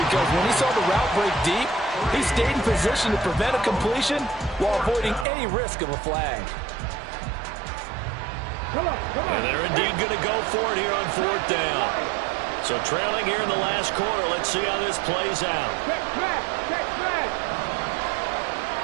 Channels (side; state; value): left; drops out; at 5.2 s